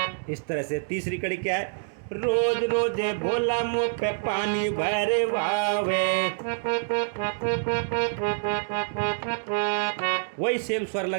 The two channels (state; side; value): silent; left; digital silence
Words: इस तरह से तीसरी कड़ी क्या है, रोज रोज भोला मुँह पे पानी भरवावे, वही सेम स्वर